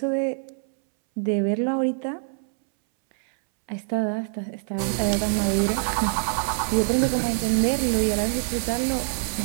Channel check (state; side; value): silent; left; 62 dB below the other